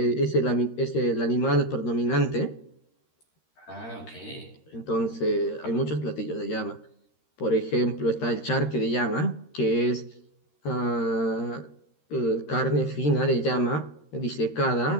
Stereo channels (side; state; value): right; late; 13 ms